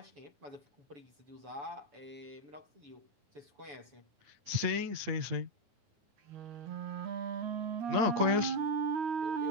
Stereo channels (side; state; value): left; late; 9.6 ms